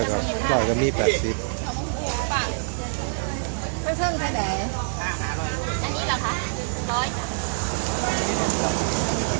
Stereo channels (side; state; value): left; silent; digital silence